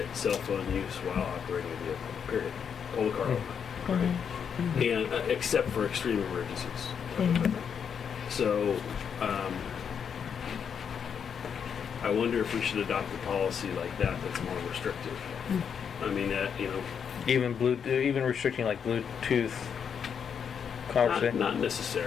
cell phone use while operating a vehicle. Period. Pull the car over. Right? And except for extreme emergencies. So, I wonder if we should adopt a policy like that that's more restrictive. I mean, even restricting, like, Bluetooth not conversation.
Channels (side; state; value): right; quieter; 7.3 dB